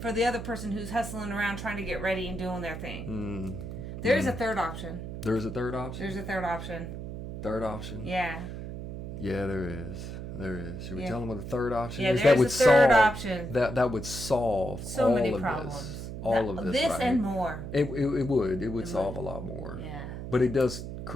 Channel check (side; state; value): right; noise; hum, 8 dB below the sound